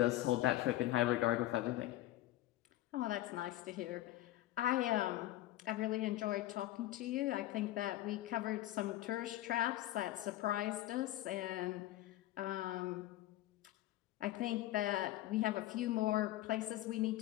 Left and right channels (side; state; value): right; quieter; 15.4 dB